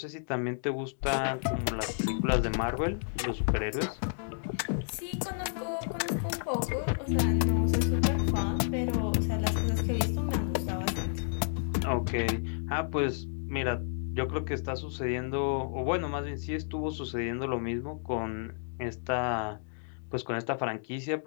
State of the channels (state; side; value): silent; right; digital silence